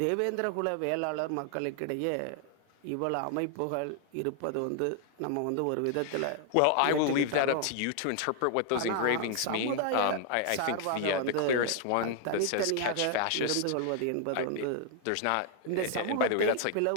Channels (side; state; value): both; different; correlation 0.00